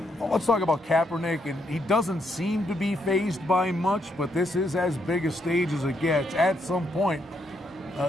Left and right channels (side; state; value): both; normal; correlation 0.77